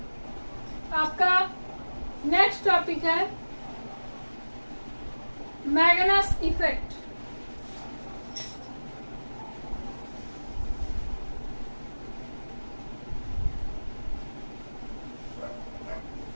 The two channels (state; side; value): inverted; both; correlation -1.00